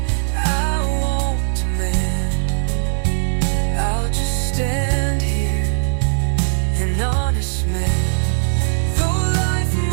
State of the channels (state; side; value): silent; left; 67 dB below the other